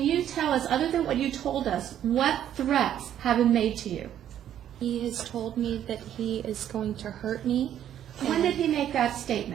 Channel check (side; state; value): left; quieter; 10.6 dB